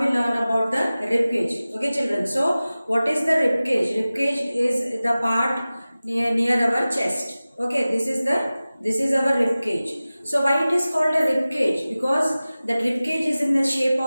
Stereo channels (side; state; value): both; inverted; correlation -0.97